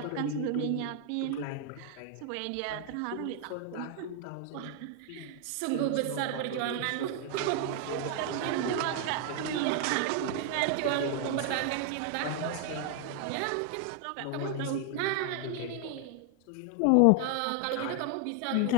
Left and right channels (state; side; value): different; both; correlation 0.00